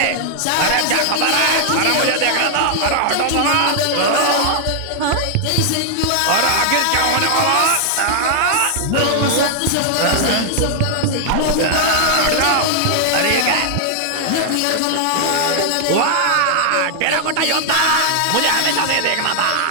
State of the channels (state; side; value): different; both; correlation 0.00